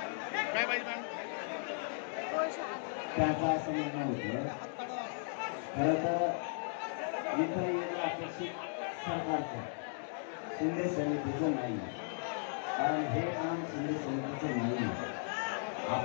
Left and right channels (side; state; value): right; silent; digital silence